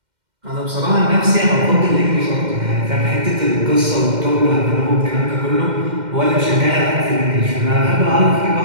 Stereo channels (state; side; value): late; left; 2.1 ms